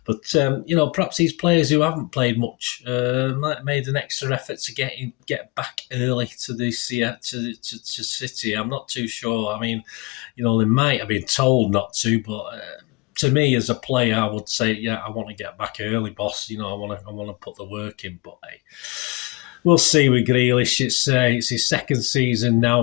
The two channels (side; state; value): right; quieter; 24.7 dB